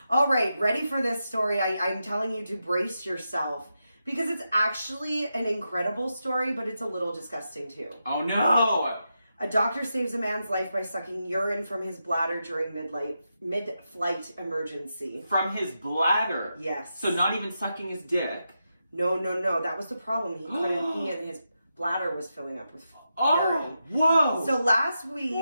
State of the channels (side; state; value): both; inverted; correlation -0.87